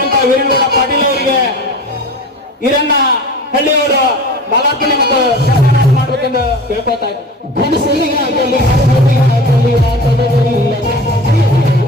ವೀರನಗೌಡ ಪಾಟೀಲ್ ಅವರಿಗೆ ಈರಣ್ಣ ಹಳ್ಳಿಯವರು ಮಾಲಾರ್ಪಣೆ ಮತ್ತು ಸನ್ಮಾನ ಮಾಡಬೇಕೆಂದು ಕೇಳ್ಕೊತಾ ಇದ್ದಾರೆ.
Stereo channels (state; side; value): normal; both; correlation 0.37